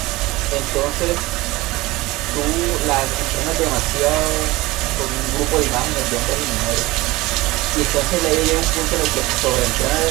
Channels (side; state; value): left; quieter; 20.3 dB